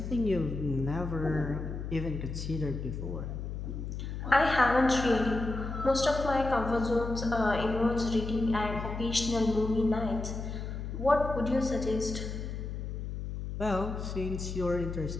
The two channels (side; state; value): left; noise; hum, 6 dB below the sound